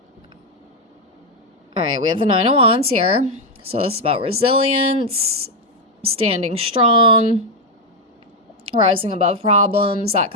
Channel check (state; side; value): normal; both; correlation 0.04